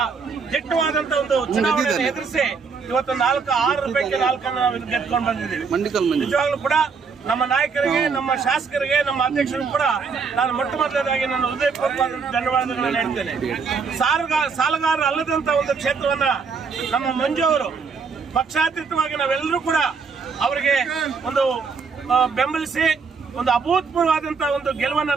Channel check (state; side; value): quieter; left; 5.3 dB